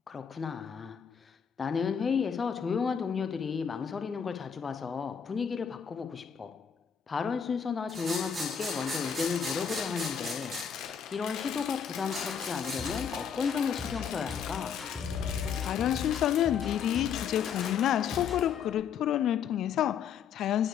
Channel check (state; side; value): quieter; right; 7.4 dB